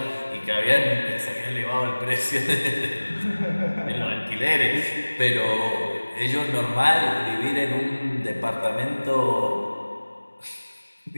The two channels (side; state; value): both; inverted; correlation -1.00